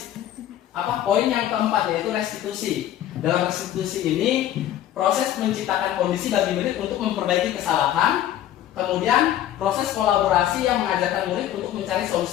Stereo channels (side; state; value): right; quieter; 12.0 dB